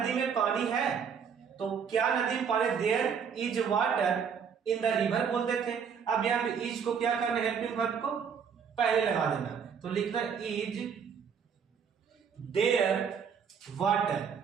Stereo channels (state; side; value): quieter; left; 6.9 dB